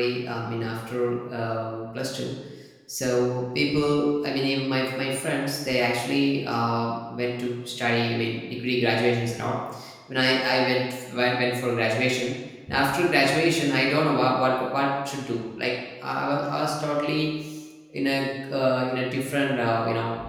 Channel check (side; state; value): both; identical; correlation 1.00